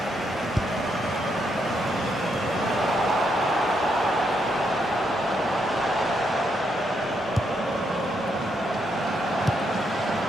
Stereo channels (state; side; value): normal; both; correlation 0.78